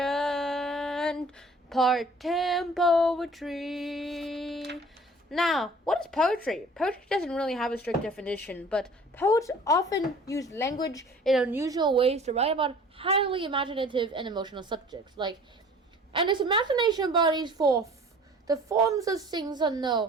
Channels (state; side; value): normal; both; correlation 0.48